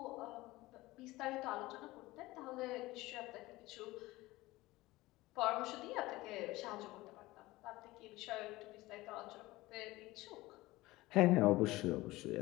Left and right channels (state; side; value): quieter; right; 19.2 dB